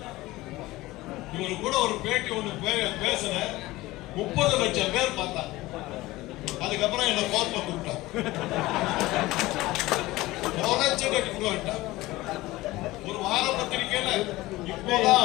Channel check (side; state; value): right; quieter; 18.8 dB